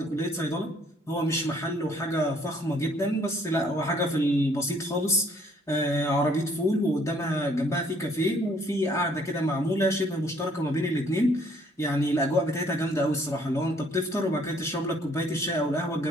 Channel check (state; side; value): normal; both; correlation 0.62